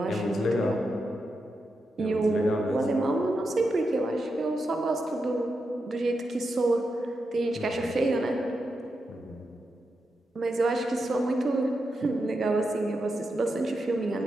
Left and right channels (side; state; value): both; normal; correlation 0.87